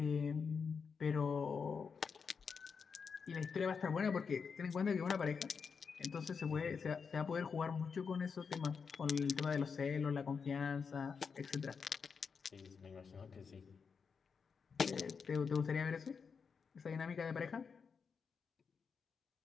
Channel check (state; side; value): quieter; right; 5.8 dB